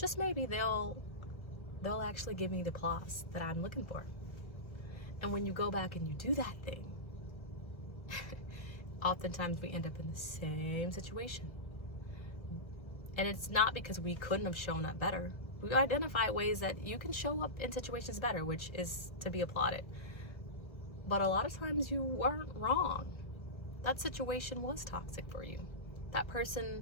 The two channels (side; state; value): right; late; 1.5 ms